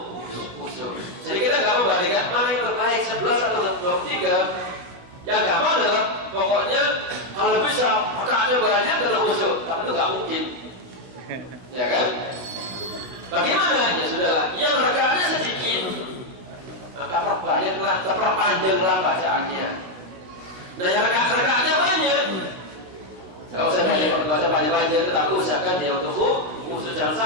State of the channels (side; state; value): left; late; 16 ms